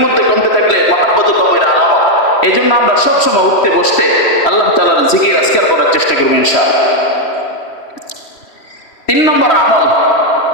মধ্যে কমতে থাকলে মহাব্বত কমের আলামত। এই জন্য আমরা সবসময় উঠতে বসতে আল্লাহ তাআলার জিকির আজকার করার চেষ্টা করবো ইনশাআল্লাহ। 3 নম্বর আমল,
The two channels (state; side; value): late; right; 3.1 ms